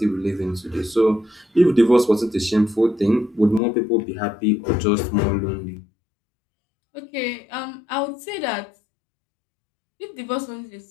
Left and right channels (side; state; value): right; drops out; at 3.6 s